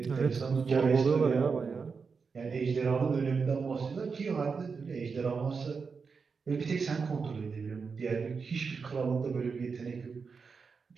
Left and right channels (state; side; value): quieter; left; 5.2 dB